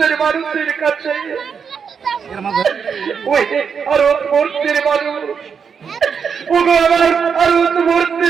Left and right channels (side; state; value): left; quieter; 6.5 dB